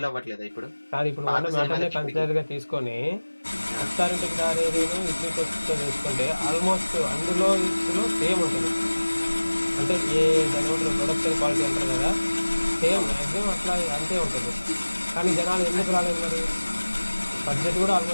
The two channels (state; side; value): inverted; both; correlation -1.00